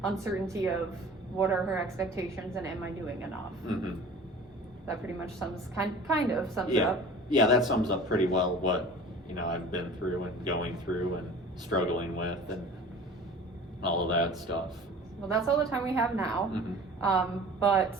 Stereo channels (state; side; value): normal; both; correlation 0.42